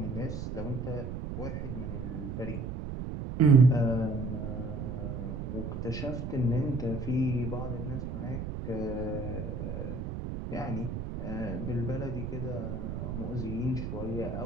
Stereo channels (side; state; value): right; noise; rumble, 5 dB below the sound